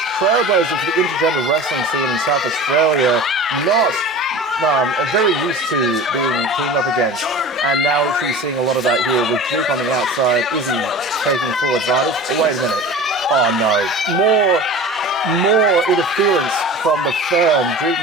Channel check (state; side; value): normal; both; correlation 0.36